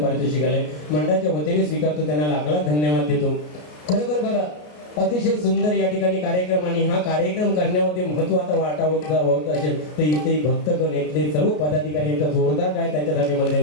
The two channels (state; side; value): late; right; 33 ms